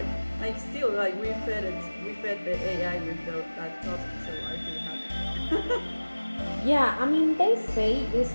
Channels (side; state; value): both; inverted; correlation -1.00